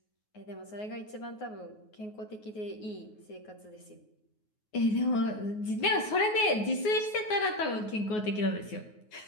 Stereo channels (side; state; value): right; late; 9.4 ms